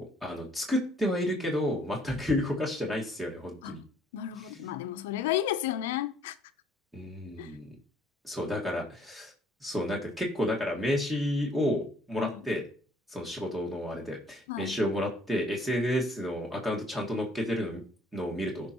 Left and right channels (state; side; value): normal; both; correlation 0.60